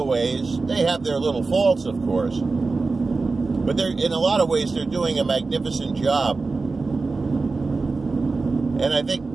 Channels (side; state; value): left; quieter; 4.0 dB